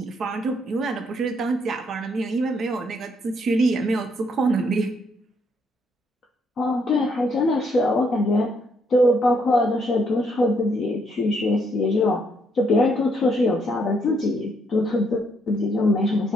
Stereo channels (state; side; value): normal; both; correlation 0.72